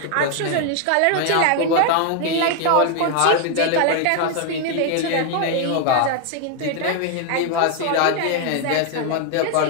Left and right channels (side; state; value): both; different; correlation 0.00